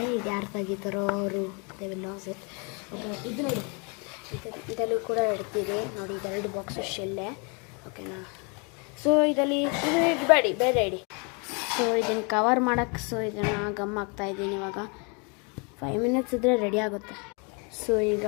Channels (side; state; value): right; quieter; 33.5 dB